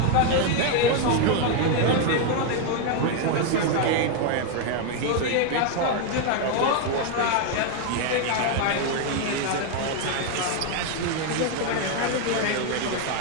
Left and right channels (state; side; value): different; both; correlation 0.01